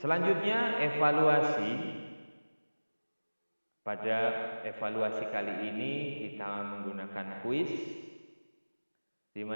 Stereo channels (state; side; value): inverted; both; correlation -1.00